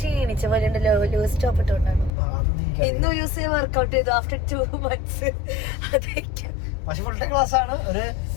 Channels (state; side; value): drops out; right; at 2.1 s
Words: പോലെ ഉണ്ടല്ലോ. ലൂസ് ടോപ്പ് ഇട്ടോണ്ടാണ് ഇന്നൊരു ദിവസം വർക്ക്ഔട്ട് ചെയ്തു. ആഫ്റ്റർ 2 months അതൊക്കെ. പക്ഷെ ഫുൾ ടൈം ക്ലാസ് ആണ്. ഒരു